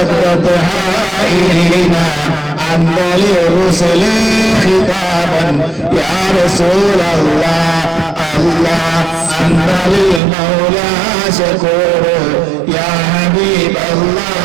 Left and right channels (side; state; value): left; drops out; at 10.2 s